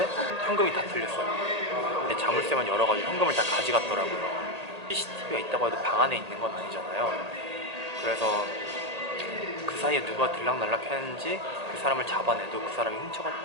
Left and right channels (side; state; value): left; late; 1.8 ms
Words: 현금이 다 틀렸어요. 자물쇠만 열어가지고 현금을 다 가져갔더라고요. CCTV가 있다고 해도 방 안에 있는 건 아니잖아요. 그래서 그 사이에 누가 들락날락 했는지 그 사람을 잡아내도 그 사람이